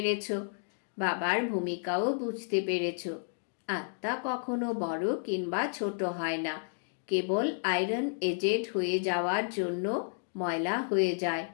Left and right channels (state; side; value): silent; right; digital silence